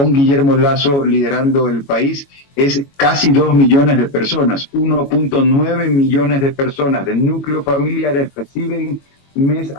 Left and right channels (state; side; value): late; right; 22 ms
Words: Guillermo Lasso liderando el país, es casi 2 millones de personas. 1.9 millones de personas de núcleos familiares reciben mes